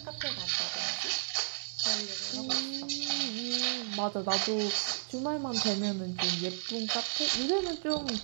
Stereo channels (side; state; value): left; silent; 56 dB below the other